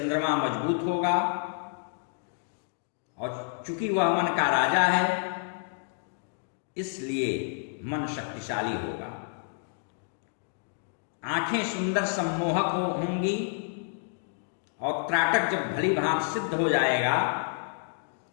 मजबूत होगा, और चूंकि वह मन का राजा है इसलिए मन शक्तिशाली होगा। आंखें सुंदर सम्मोहक होंगी, और त्राटक जब भली भांति सिद्ध हो जाएगा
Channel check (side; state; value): right; silent; 58 dB below the other